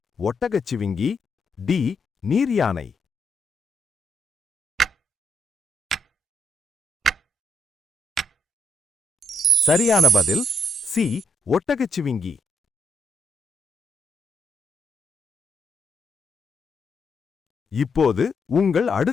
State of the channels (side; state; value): both; normal; correlation 0.78